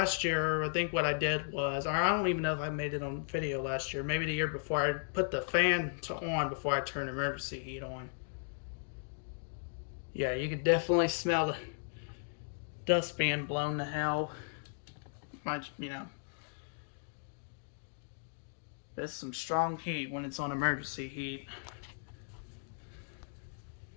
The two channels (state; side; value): silent; right; digital silence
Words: year, I think what I did was, I don't even know if I made it on video last year, maybe the year before, I put the fan on before I turned emergency heat on. Yeah, you could definitely smell the dust being blown to hell. You know, there's some strong heat when it's on emergency heat.